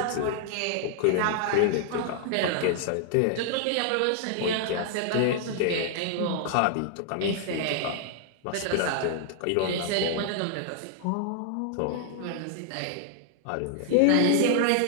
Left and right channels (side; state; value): both; different; correlation -0.01